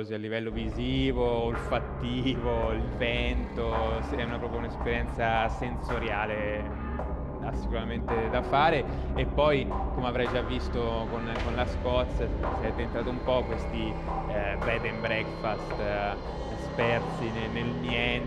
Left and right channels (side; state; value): both; identical; correlation 1.00